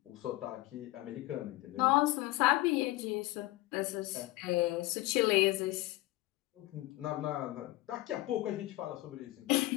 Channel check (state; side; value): quieter; right; 18.5 dB